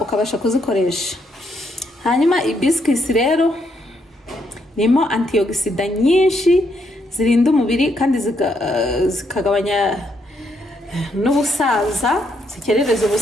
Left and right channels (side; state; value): both; normal; correlation 0.75